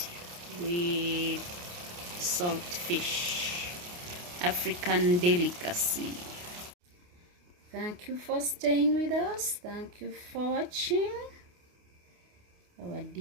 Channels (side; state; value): left; late; 28 ms